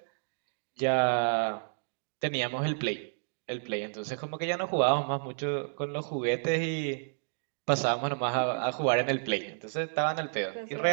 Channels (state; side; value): silent; left; digital silence